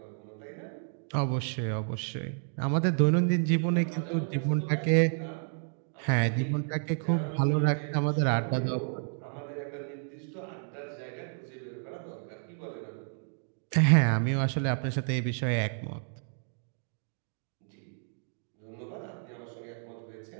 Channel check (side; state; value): left; silent; 57 dB below the other